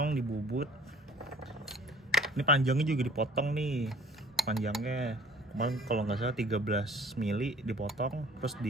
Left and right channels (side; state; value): both; normal; correlation 0.52